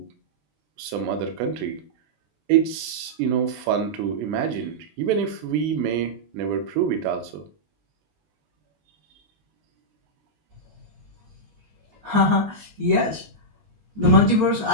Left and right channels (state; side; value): late; left; 20 ms